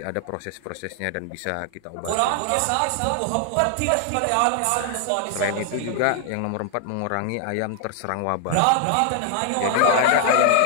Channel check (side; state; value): both; different; correlation 0.00